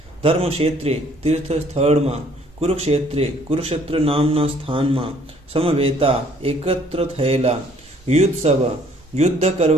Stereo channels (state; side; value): normal; both; correlation 0.61